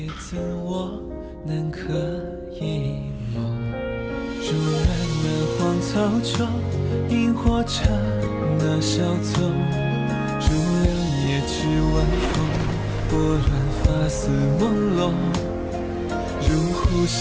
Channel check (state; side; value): identical; both; correlation 1.00